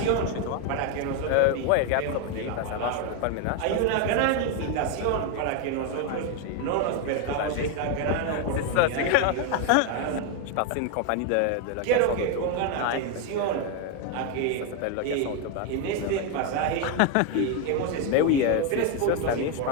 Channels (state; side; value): different; both; correlation 0.01